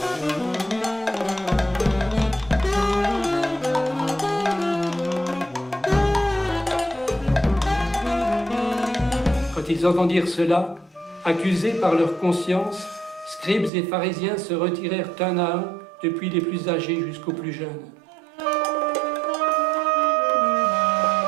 Quand ils entendirent cela, accusés par leur conscience, scribes et pharisiens se retirèrent un à un, depuis les plus âgés jusqu'aux plus jeunes.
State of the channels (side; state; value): left; drops out; at 13.7 s